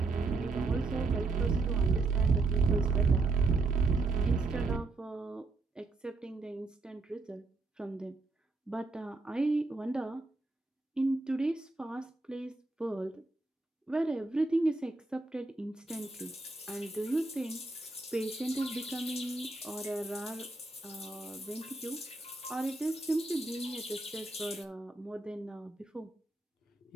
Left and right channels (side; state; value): left; quieter; 3.4 dB